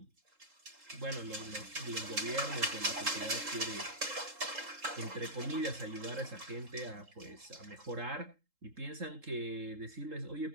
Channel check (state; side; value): late; left; 3.7 ms